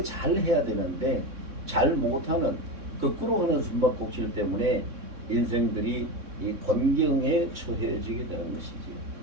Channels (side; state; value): left; late; 3.6 ms